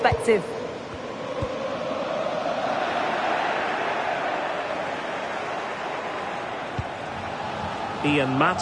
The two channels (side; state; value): both; identical; correlation 1.00